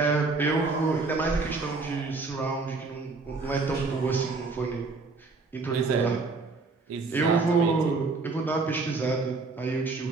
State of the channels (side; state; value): left; quieter; 3.9 dB